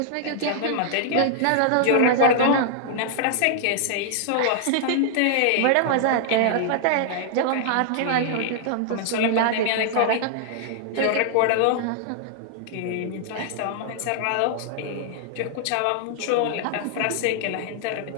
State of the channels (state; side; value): different; both; correlation -0.01